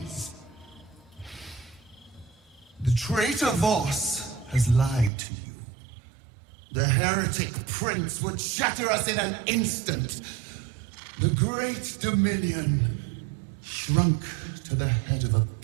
The traitor Voss has lied to you. The heretic prince would shatter us in an instant. The great Dominion shrunk to the head of a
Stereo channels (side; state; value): left; drops out; at 5.1 s